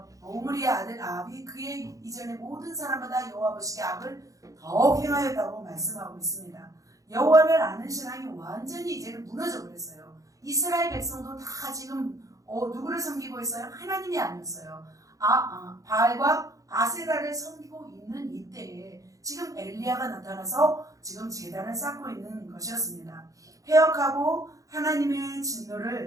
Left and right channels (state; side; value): late; left; 0.16 ms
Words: 아들 아합이 그의 이전의 모든 사람마다 여호와 보시기에 악을 더욱 행하였다고 말씀하고 있습니다. 여호와를 아는 신앙이 완전히 이제는 무너져 버렸어요. 이스라엘 백성도 다 지금 누구를 섬기고 있어요? 하나님이 아니었어요. 바알과 아세라를 섬기고 있는 이때에 지금 엘리야가 나타나서 지금 제단을 쌓고 있는 것이었습니다. 폐역하고 하나님의